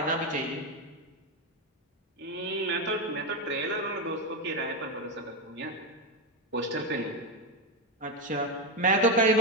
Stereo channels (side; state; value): both; normal; correlation 0.08